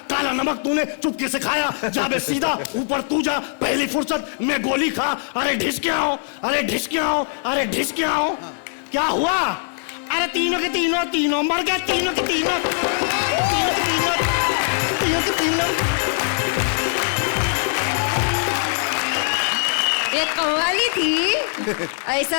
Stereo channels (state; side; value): silent; right; 59 dB below the other